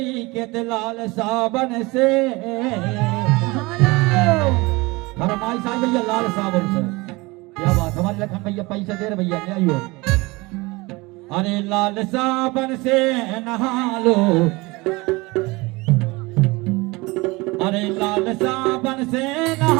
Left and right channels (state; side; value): quieter; left; 23.5 dB